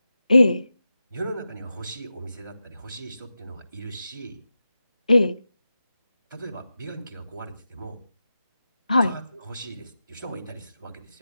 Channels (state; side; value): inverted; both; correlation -0.92